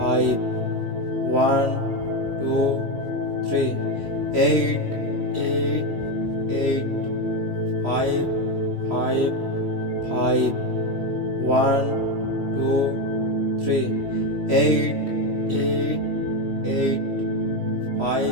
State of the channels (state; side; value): late; left; 3.1 ms